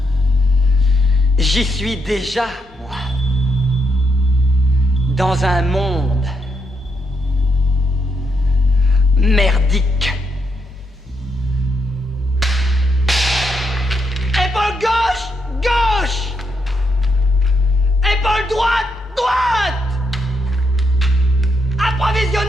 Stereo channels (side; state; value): both; normal; correlation 0.79